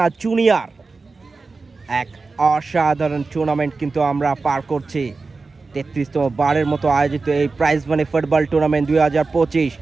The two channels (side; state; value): left; quieter; 4.0 dB